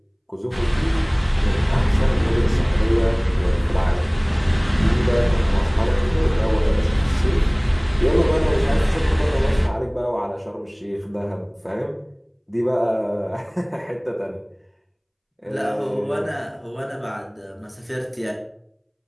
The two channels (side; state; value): both; identical; correlation 1.00